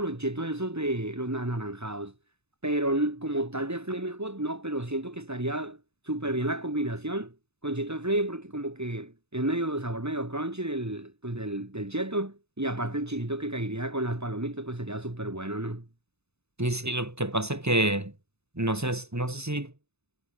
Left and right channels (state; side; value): late; left; 0.80 ms